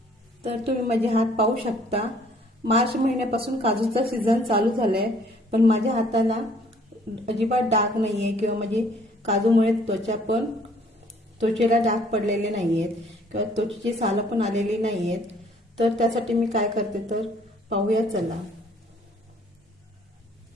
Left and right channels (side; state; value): both; normal; correlation 0.60